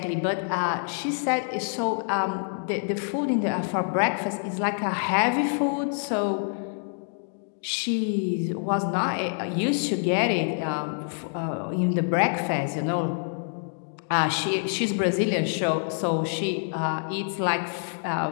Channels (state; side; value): silent; right; 60 dB below the other